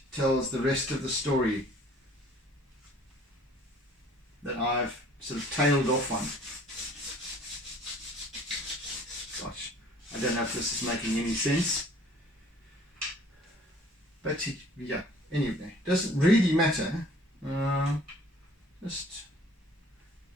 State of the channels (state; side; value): normal; both; correlation 0.53